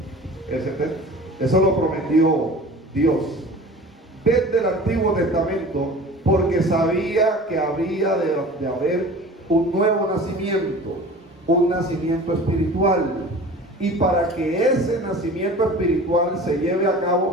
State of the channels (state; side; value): normal; both; correlation 0.40